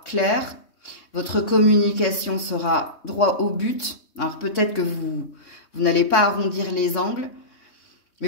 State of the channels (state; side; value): late; right; 3.6 ms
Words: claire, votre communication sera droit au but. Alors peut-être que vous n'allez pas arrondir les angles, mais